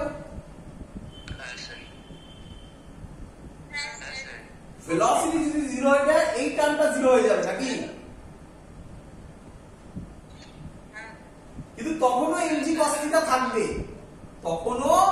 ভেলোসিটি যদি 0 হয়ে যায় এই টার্মটা 0 হয়ে যাবে নাকি? কিন্তু তখনও এমজি কস থিটা থাকবে, তখনও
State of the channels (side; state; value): both; identical; correlation 1.00